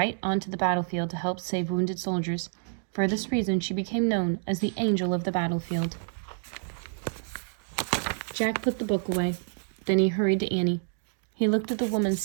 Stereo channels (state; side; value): silent; left; digital silence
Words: onto the battlefield to help save wounded soldiers. For this reason, she became known as the Angel of the Battlefield. Jack put the book away. Then he hurried to Annie. He looked at the woman